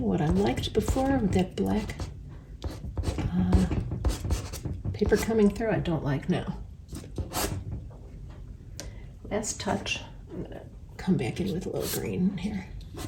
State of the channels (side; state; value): both; identical; correlation 1.00